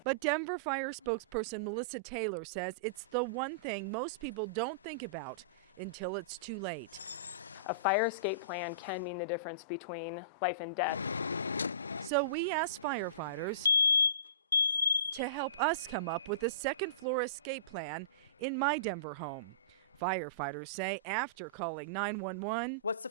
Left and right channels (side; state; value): both; inverted; correlation -0.33